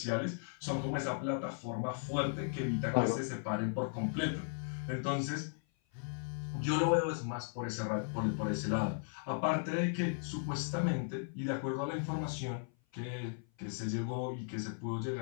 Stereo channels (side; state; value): right; silent; 53 dB below the other